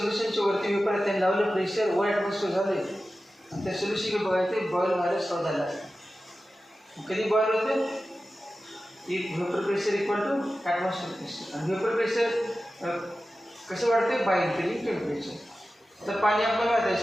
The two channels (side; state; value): both; normal; correlation 0.94